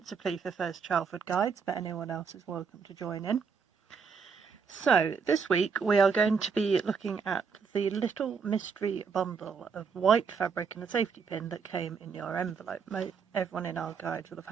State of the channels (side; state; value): left; quieter; 5.8 dB